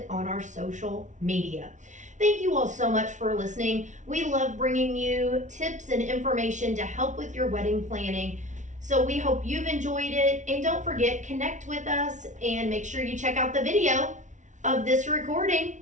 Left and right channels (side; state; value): left; late; 0.36 ms